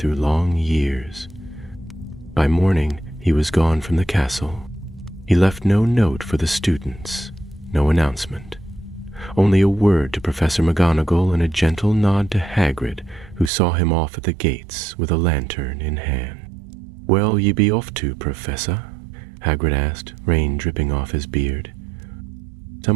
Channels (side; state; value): left; drops out; at 13.5 s